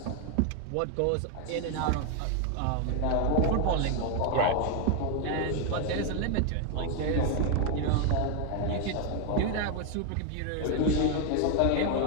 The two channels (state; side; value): different; both; correlation 0.00